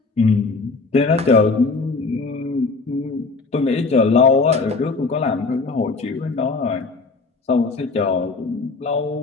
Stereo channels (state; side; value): quieter; right; 4.0 dB